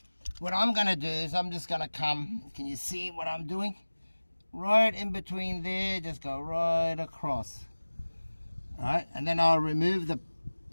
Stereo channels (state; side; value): inverted; both; correlation -1.00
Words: what I'm going to do is I'm just going to come, can you see what I'm doing? Right in between there, just go right across. All right, and then I'll remove the